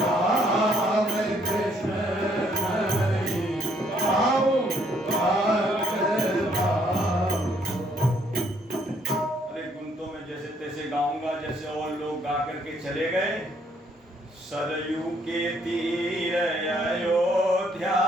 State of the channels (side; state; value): both; normal; correlation 0.68